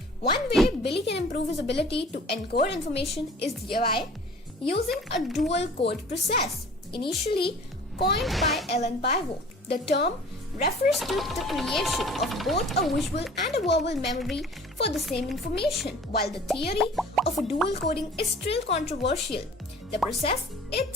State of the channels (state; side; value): normal; both; correlation 0.47